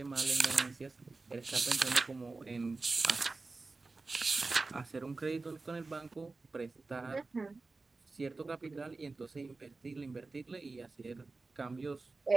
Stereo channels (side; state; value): left; quieter; 3.7 dB